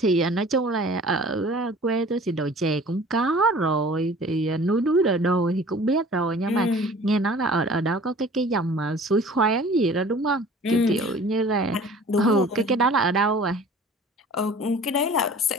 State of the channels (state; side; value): normal; both; correlation 0.47